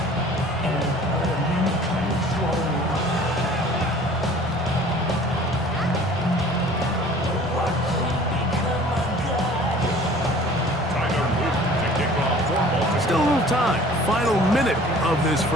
Still a little time. Final minute of this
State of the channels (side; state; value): both; normal; correlation 0.48